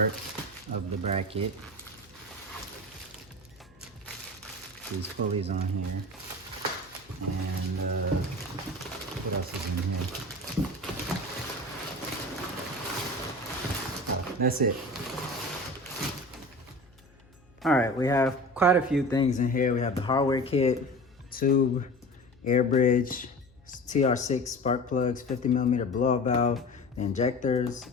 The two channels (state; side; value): noise; left; hum, 29 dB below the sound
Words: of the bracket. These pulleys on here. And what else is in here? So that's it. All right, we have quite a few things in here. We have the hardware kit, tube, air bridge, TR6 spark plugs, 50mm blow-off valve, the injectors,